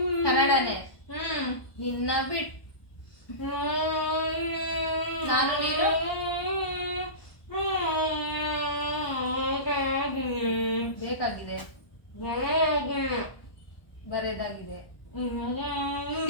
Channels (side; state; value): right; late; 1.0 ms